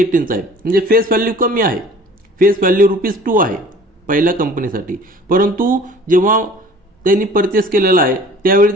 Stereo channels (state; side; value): normal; both; correlation 0.48